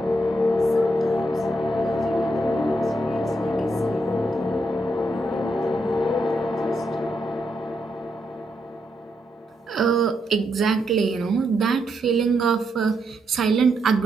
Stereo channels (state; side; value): normal; both; correlation 0.80